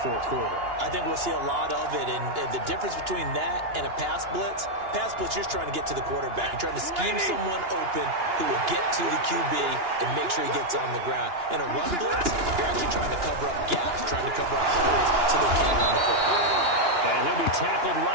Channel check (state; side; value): late; left; 2.9 ms